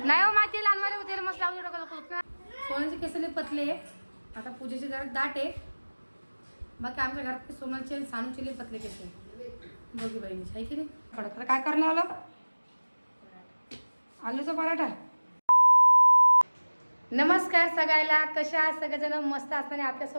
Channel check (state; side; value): inverted; both; correlation -1.00